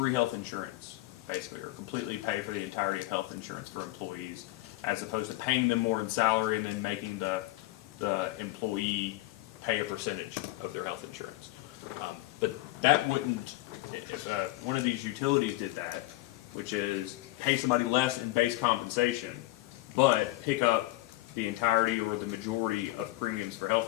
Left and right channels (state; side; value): quieter; right; 18.6 dB